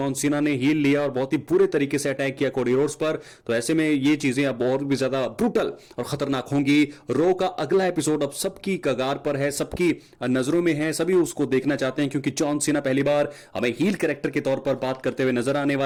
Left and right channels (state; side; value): identical; both; correlation 1.00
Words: सीना ने हील लिया और बहुत ही बुरे तरीके से अटैक किया कोडी रोड्स पर। तो ऐसे में ये चीजें अब और भी ज्यादा ब्रूटल और खतरनाक होंगी। रो का अगला एपिसोड अब सबकी कगार पर है, सबकी नजरों में है, सभी उसको देखना चाहते हैं, क्योंकि जॉन सीना पहली बार हमें हील कैरेक्टर के तौर पर बात करते हुए नजर आने